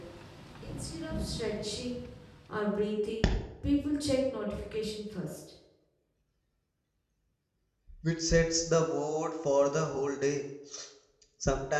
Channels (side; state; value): both; identical; correlation 1.00